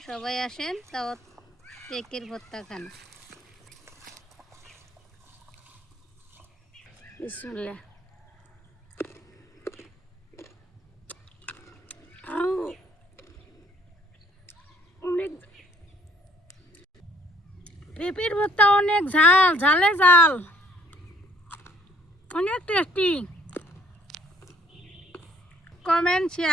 সবাই আসেন, তাও পেঁপের ভর্তা খান। বিসমিল্লাহ। অনেক পেঁপের ভর্তা, অনেক ঝাল, ঝালে ঝাল, অনেক টেস্টি। Comment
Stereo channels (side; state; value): both; normal; correlation 0.62